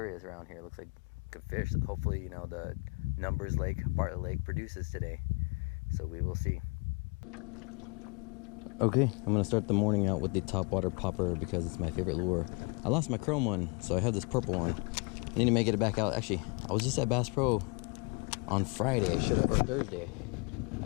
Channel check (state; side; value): quieter; right; 31.3 dB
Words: around here. Looks like good fish. Hopefully, you know, the numbers Lake, Bartlett Lake produces today. So we will see. Okay, I'm gonna start the morning out with the topwater popper because it's my favorite lure. I lost my chrome one, so I have this purple one. I need to make it back out. Actually, I was just at Bass Pro on Friday. I should have, or Thursday.